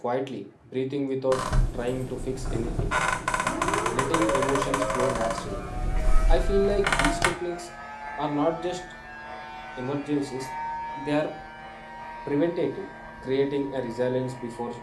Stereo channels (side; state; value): both; identical; correlation 1.00